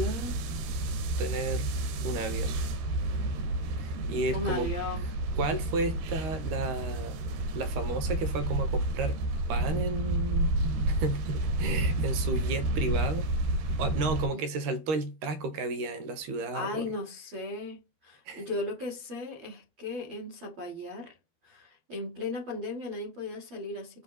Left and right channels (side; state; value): left; late; 13 ms